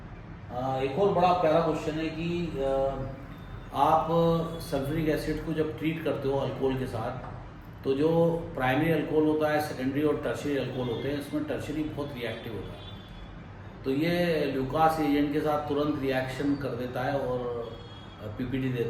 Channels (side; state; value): both; identical; correlation 1.00